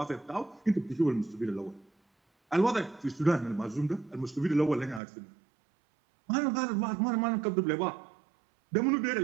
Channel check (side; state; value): left; drops out; at 5.0 s